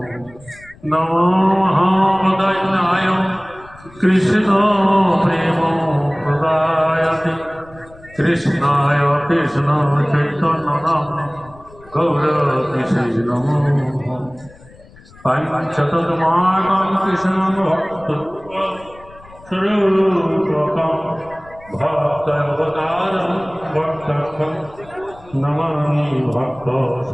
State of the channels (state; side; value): noise; left; rumble, 23 dB below the sound